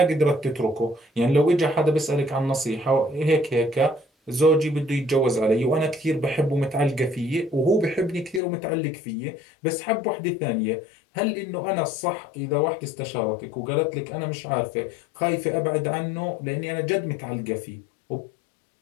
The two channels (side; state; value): right; drops out; at 8.4 s